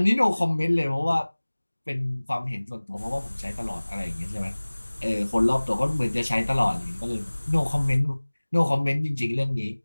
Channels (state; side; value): inverted; both; correlation -1.00